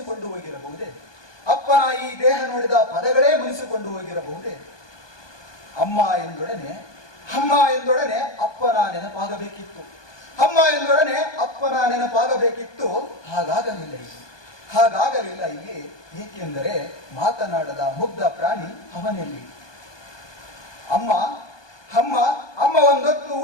ಹೋಗಿರಬಹುದೇ? ಅಪ್ಪನ ಈ ದೇಹ ನೋಡಿದ ಪದಗಳೇ ಮುನಿಸಿಕೊಂಡು ಹೋಗಿರಬಹುದೇ? ಅಮ್ಮ ಎಂದೊಡನೆ ಅಪ್ಪನ ನೆನಪಾಗಬೇಕಿತ್ತು. ಹಾಗಾಗಲಿಲ್ಲ ಇಲ್ಲಿ. ಏಕೆಂದರೆ ಮಾತನಾಡದ ಮುಗ್ಧ ಪ್ರಾಣಿ ಅವನಲ್ಲಿ. ಅಮ್ಮ ಒಂದೊತ್ತು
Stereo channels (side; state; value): right; late; 1.2 ms